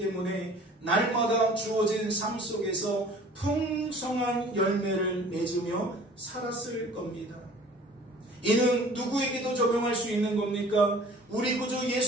날마다 주어진 삶 속에서 풍성한 열매를 맺으며 살았을 겁니다. 이는 누구에게도 적용할 수 있는 겁니까? 우리 구주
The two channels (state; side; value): normal; both; correlation 0.48